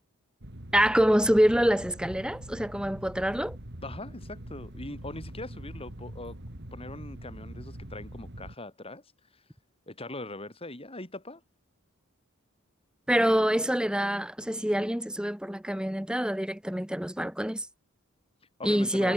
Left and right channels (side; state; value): both; normal; correlation 0.91